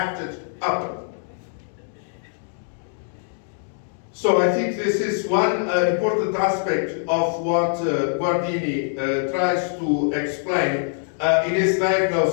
upon. So I think this is one important aspect of what Guardini tries to explain in his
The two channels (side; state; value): right; silent; 63 dB below the other